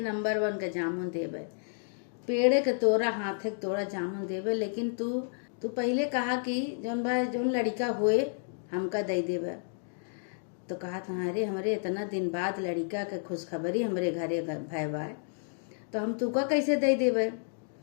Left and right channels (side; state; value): right; silent; digital silence